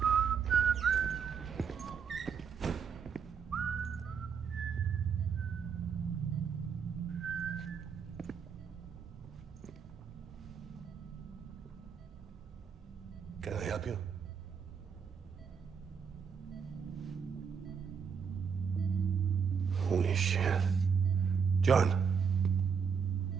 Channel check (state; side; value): quieter; left; 6.5 dB